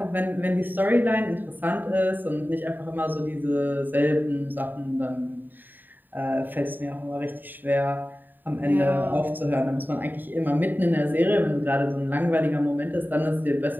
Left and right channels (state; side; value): late; left; 0.090 ms